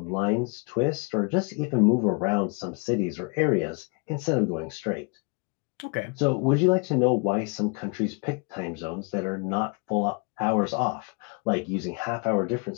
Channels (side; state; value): right; quieter; 32.7 dB